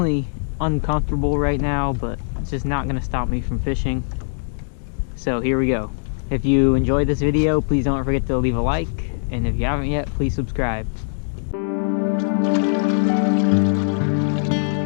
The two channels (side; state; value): right; silent; digital silence